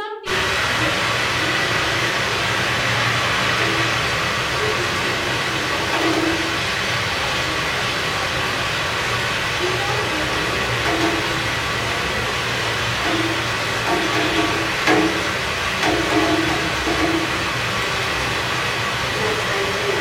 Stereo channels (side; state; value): both; identical; correlation 1.00